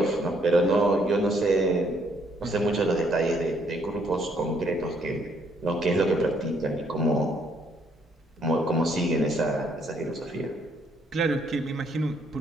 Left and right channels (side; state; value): both; normal; correlation 0.68